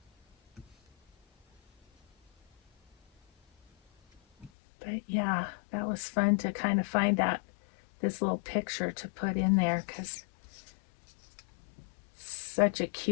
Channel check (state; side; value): drops out; right; at 4.5 s